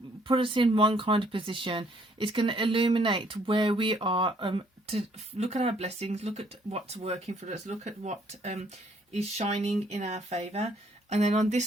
put us in one kind of position, it's going to illuminate where we are, to look at our blessings, look at what's working for us, look at what is shining in our favour. And then on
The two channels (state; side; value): normal; both; correlation 0.65